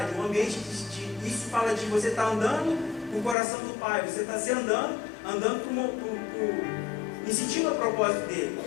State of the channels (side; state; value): right; drops out; at 3.4 s